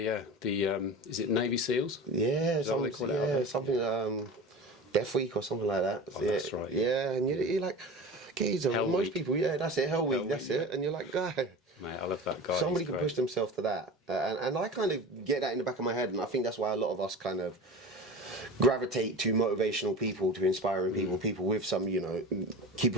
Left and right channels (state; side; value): normal; both; correlation 0.33